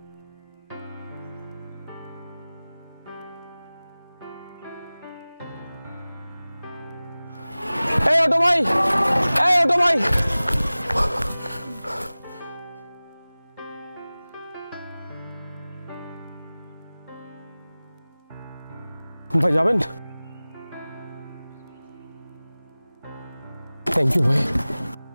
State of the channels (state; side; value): inverted; both; correlation -0.99